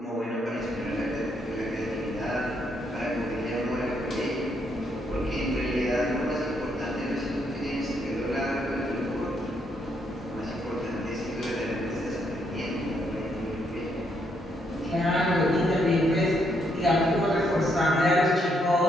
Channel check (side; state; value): both; normal; correlation 0.75